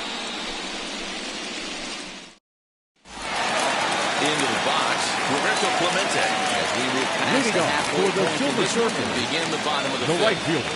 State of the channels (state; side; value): identical; both; correlation 1.00